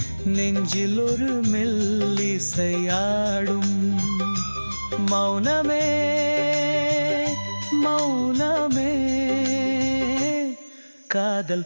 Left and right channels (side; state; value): both; inverted; correlation -1.00